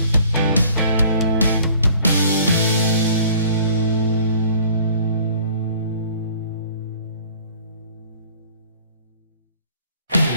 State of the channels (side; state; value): both; inverted; correlation -0.52